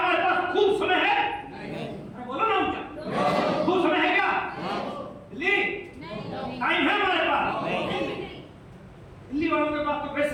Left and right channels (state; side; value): identical; both; correlation 1.00